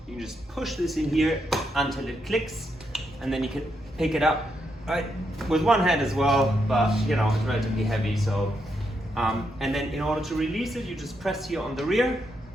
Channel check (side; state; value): both; normal; correlation 0.80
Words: you can just push this in here until it clicks, and then you can pick it up right with one hand as well, but you know, it's relatively heavy. So and then in order to release it, you just press here on the rear,